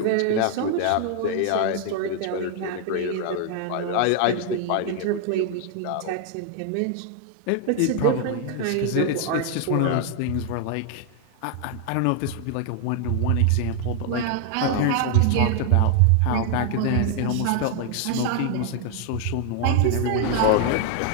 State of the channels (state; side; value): different; both; correlation 0.00